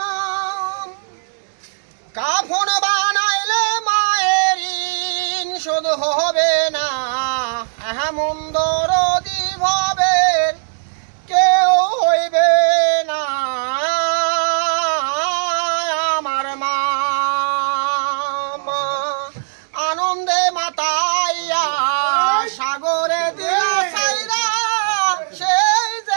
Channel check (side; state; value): left; silent; 67 dB below the other